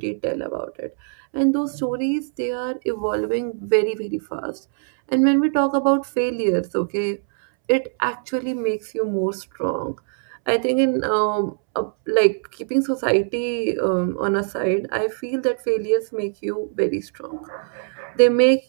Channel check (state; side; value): silent; left; 64 dB below the other